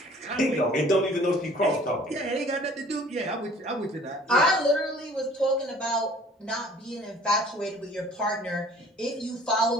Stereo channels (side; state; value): both; normal; correlation 0.52